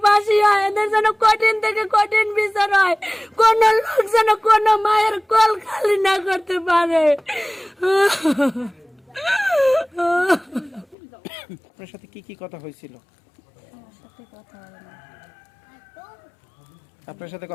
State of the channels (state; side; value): drops out; right; at 11.0 s